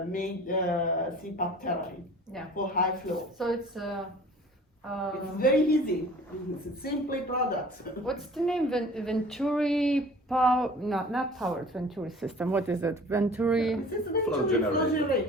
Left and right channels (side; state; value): both; normal; correlation 0.46